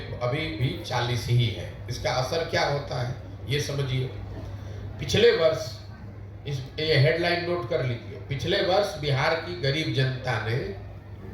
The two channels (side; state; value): both; identical; correlation 1.00